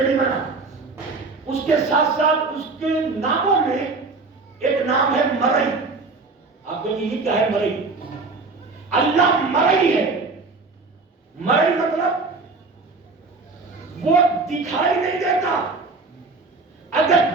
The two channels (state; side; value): quieter; left; 3.9 dB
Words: نہیں بنا۔ اس کے ساتھ ساتھ اس کے ناموں میں ایک نام ہے مرئی۔ آپ کہیں یہ کیا ہے مرئی؟ اللہ مرئی ہے۔ مرئی مطلب وہ دکھائی نہیں دیتا۔ اگر